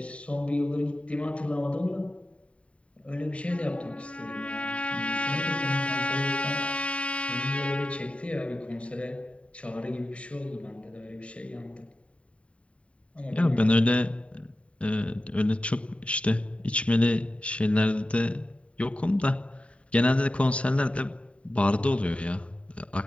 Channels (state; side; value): late; right; 0.063 ms